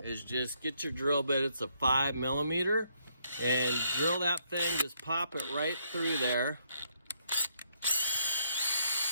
is just get your drill bit. It's a 5mm, and drill that thing. Just pop it right through there.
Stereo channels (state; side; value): inverted; both; correlation -0.73